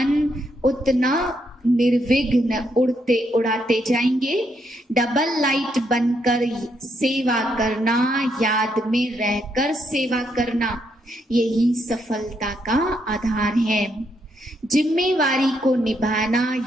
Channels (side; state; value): both; normal; correlation 0.77